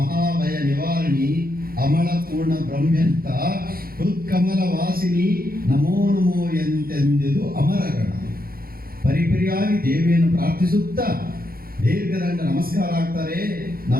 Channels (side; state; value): left; late; 0.43 ms